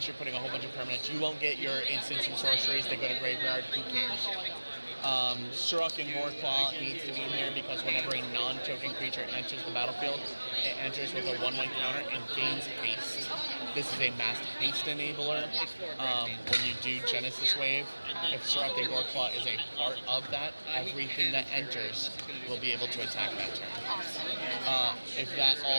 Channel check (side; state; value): both; inverted; correlation -1.00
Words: you're putting a whole bunch of permanents. You won't get your instants and sorceries that go to graveyard. Who cares? Sirach and Goreclaw needs to be in here because whenever a non-token creature enters the battlefield, it enters with a 1/1 counter and gains haste. This is a mass haste enabler. When you do Genesis Wave, if Sirach and Goreclaw is a part of that, everything that enters will be able to attack that turn. If that